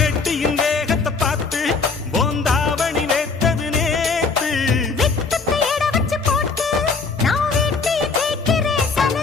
வேகத்தை பார்த்து போந்தாவணி வேத்தது நேத்து வெட்டத்தை எட வச்சு போட்டு நான் வீட்டில் கேட்கிறேன்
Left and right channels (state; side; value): quieter; right; 4.5 dB